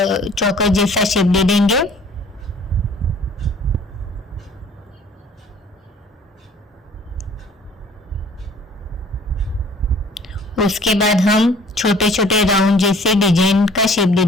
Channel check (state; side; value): normal; both; correlation 0.53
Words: जैसा शेप दे देंगे। उसके बाद हम छोटे छोटे राउंड जैसे डिजाइन का शेप दे